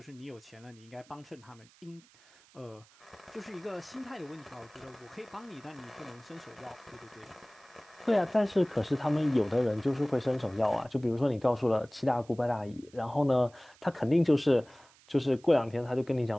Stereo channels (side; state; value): right; noise; hiss, 27 dB below the sound